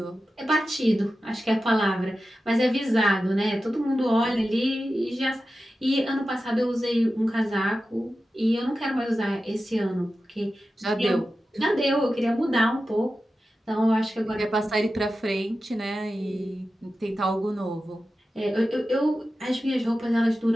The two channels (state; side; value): normal; both; correlation 0.93